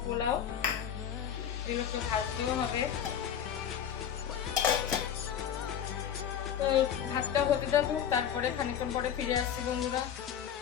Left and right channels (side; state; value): right; quieter; 9.0 dB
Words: পোলাও, এগুলোকে ভাজতেও হবে। তো ভাতটা হতে থাকুক, তারপরে খানিকক্ষণ পরে ফিরে আসছি বন্ধুরা।